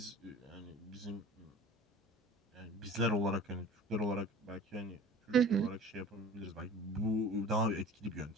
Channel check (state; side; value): normal; both; correlation 0.41